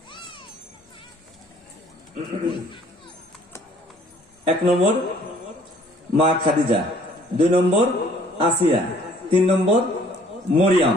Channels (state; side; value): normal; both; correlation 0.59